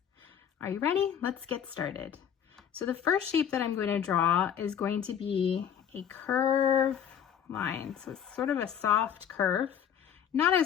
Are you ready? Let's get started. So the first shape that I'm going to draw is going to be a curve line. So it's sort of a soft curve, not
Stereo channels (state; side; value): quieter; right; 8.8 dB